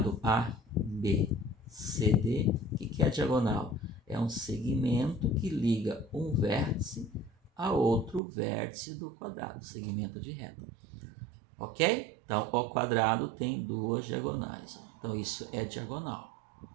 ABCD. O que é a diagonal? É um segmento que liga um vértice a outro vértice do quadrado, segmento de reta. Ok? Então, o quadrado tem duas diagonais. Então, isso é diagonal.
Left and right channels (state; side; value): drops out; left; at 8.2 s